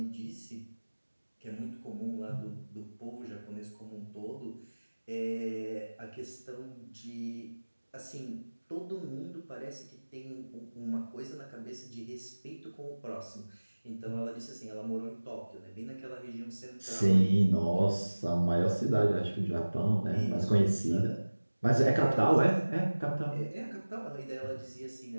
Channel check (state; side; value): inverted; both; correlation -1.00